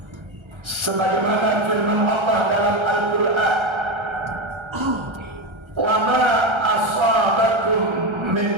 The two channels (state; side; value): late; left; 1.3 ms